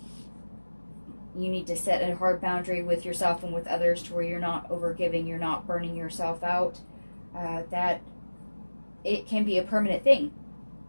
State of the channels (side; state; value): both; inverted; correlation -1.00